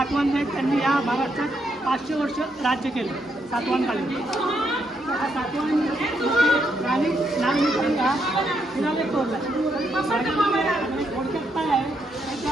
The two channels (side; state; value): both; normal; correlation 0.78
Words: त्यांनी या महाराष्ट्रात 500 वर्ष राज्य केलं सातवाहनकालीन. हा सातवाहन राणी नागमित्रांनी हा पुण्याला तोडला. थोडक्यात काय आहे